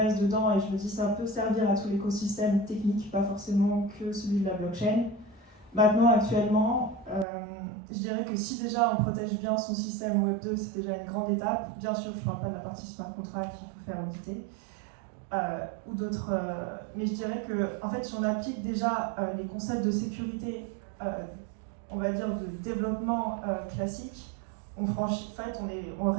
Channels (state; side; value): drops out; left; at 7.2 s